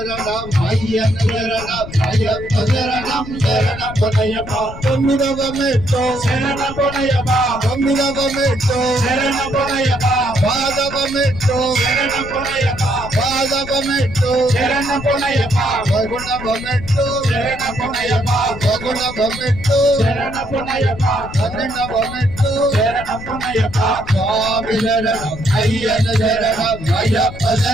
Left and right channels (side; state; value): left; noise; rumble, 12 dB below the sound